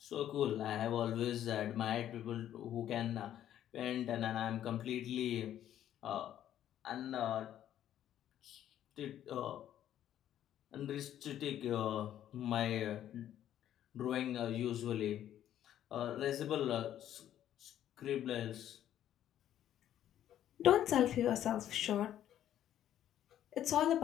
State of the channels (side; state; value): right; quieter; 11.3 dB